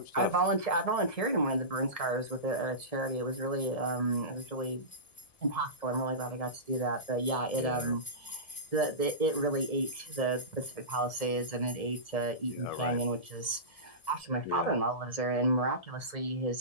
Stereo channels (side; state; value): right; late; 1.7 ms